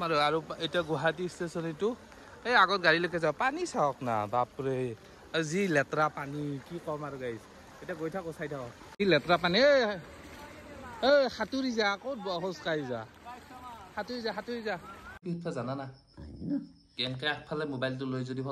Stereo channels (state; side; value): identical; both; correlation 1.00